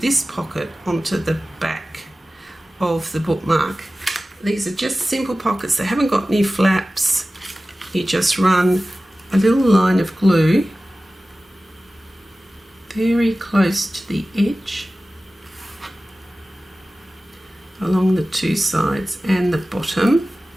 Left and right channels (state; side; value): normal; both; correlation 0.96